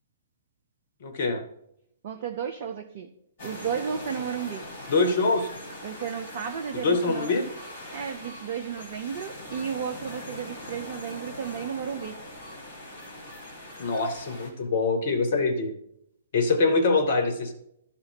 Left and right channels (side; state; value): both; inverted; correlation -0.53